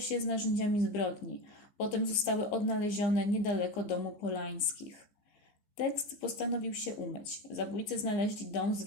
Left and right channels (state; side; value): late; right; 14 ms